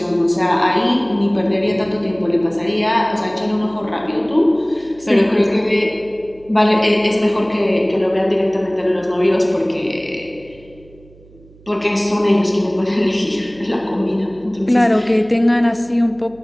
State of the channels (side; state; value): right; noise; hum, 25 dB below the sound